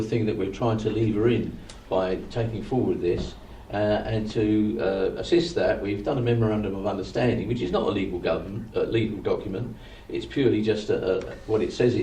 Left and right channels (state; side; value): identical; both; correlation 1.00